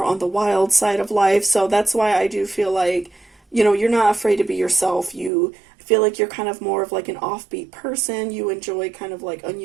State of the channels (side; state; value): left; drops out; at 5.3 s